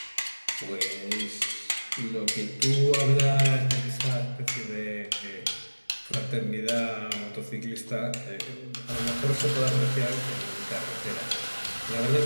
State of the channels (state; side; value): inverted; both; correlation -1.00